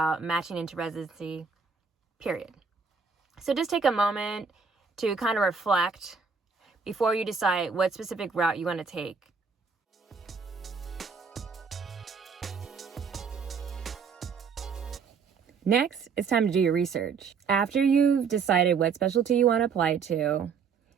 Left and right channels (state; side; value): quieter; left; 5.6 dB